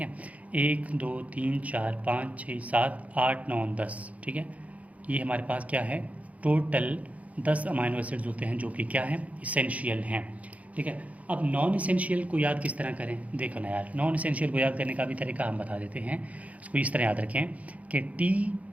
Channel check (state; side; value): late; left; 0.069 ms